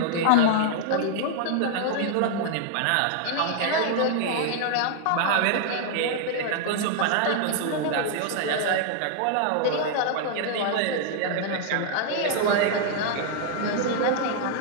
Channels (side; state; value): both; different; correlation 0.00